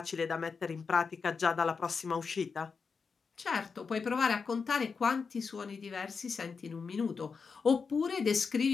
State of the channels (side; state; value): right; quieter; 5.3 dB